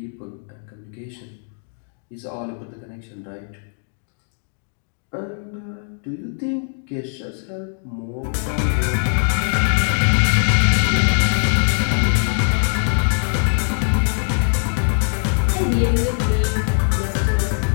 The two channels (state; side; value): silent; right; digital silence